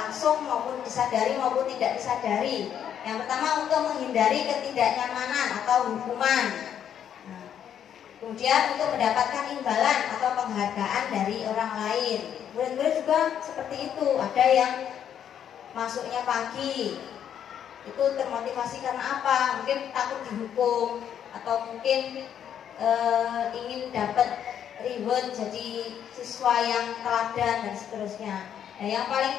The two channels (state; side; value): quieter; right; 9.2 dB